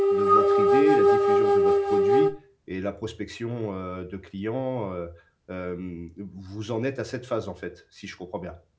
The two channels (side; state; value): both; identical; correlation 1.00